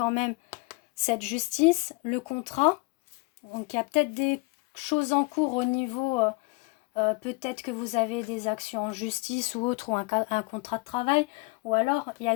même cette justice, le contrat, donc il y a peut-être des choses en cours au niveau, peut-être que vous avez des actions en justice ou autre, ou un contrat de travail, ou alors il y a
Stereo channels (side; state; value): right; quieter; 27.3 dB